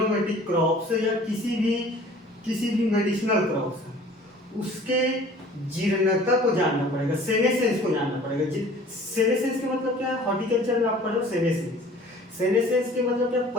क्रॉप्स या किसी भी मेडिसिनल क्रॉप्स, उसके जीर्णता को जानना पड़ेगा, सेनेसेंस को जानना पड़ेगा। सेनेसेंस का मतलब क्या है? हॉर्टिकल्चर में आप पढ़ो सेनेसेंस। सेनेसेंस के मतलब क्या,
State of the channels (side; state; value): both; normal; correlation 0.49